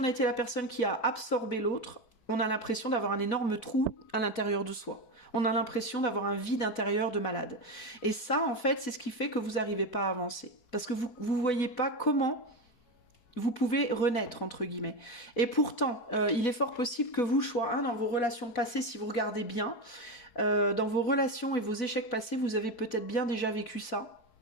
a été la personne qui a absorbé l'autre, on a l'impression d'avoir un énorme trou à l'intérieur de soi. On a l'impression d'avoir un vide intérieur de malade. Et ça, en fait, c'est ce qui fait que vous n'arrivez pas à avancer. Parce que vous ne voyez pas comment vous pouvez renaître, entre guillemets. Et pourtant, il est fort possible que vous, choix 1, dans vos relations passées, si vous regardez bien, dans vos relations et vos échecs passés, vous avez peut-être bien déjà vécu ça.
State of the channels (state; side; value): late; right; 4.5 ms